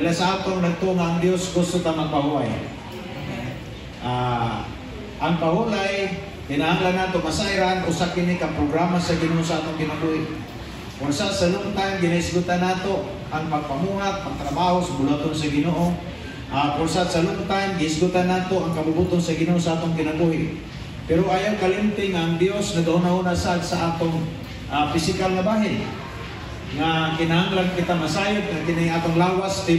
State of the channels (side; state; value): both; identical; correlation 1.00